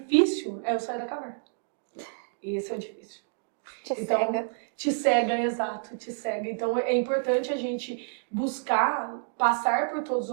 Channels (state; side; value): silent; left; digital silence